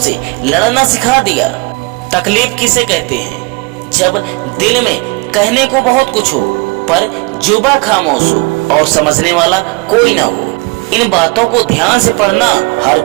लड़ना सिखा दिया। तकलीफ किसे कहते हैं? जब दिल में कहने को बहुत कुछ हो पर जुबा खामोश हो और समझने वाला कोई ना हो। इन बातों को ध्यान से पढ़ना, हर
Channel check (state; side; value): quieter; left; 26.8 dB